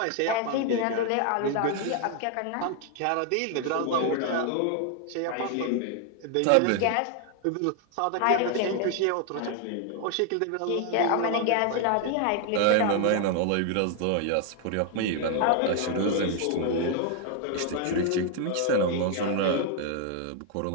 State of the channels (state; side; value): different; both; correlation 0.00